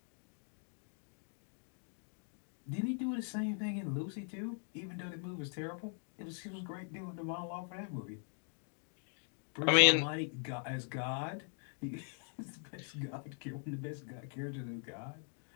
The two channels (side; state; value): right; silent; 51 dB below the other